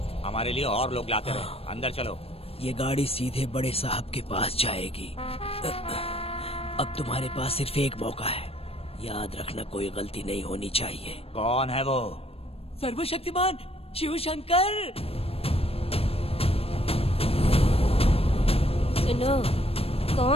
हमारे लिए और लोग लाते रहे। अंदर चलो। ये गाड़ी सीधे बड़े साहब के पास जाएगी। अब तुम्हारे पास सिर्फ एक मौका है, याद रखना कोई गलती नहीं होनी चाहिए। कौन है वो? सर्वशक्तिमान शिव शंकर। सुनो,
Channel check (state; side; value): late; right; 0.28 ms